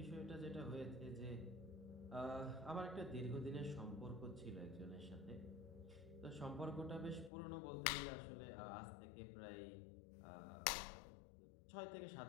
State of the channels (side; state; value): right; drops out; at 7.3 s